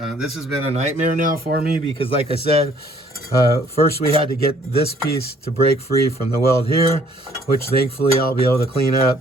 This has been a nightmare now for me because, like I said, first we had to get this piece to break free from the weld here, which thankfully I'll be able to clean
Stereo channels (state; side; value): normal; both; correlation 0.61